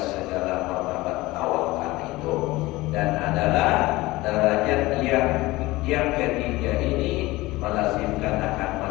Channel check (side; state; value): right; quieter; 19.9 dB